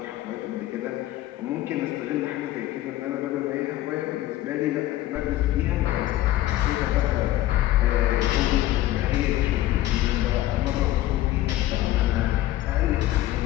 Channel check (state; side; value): quieter; right; 15.0 dB